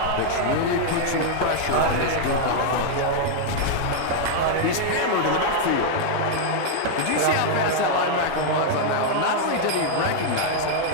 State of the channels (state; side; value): different; both; correlation -0.01